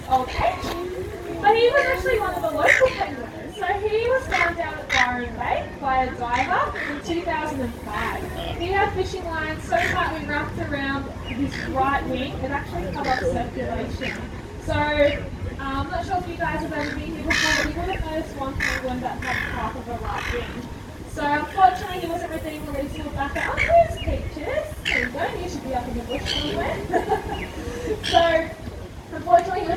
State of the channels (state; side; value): identical; both; correlation 1.00